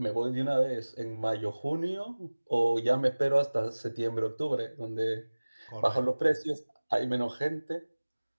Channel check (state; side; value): inverted; both; correlation -1.00